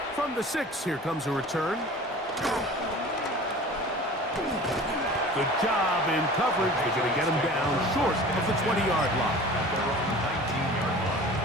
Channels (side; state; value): both; normal; correlation 0.41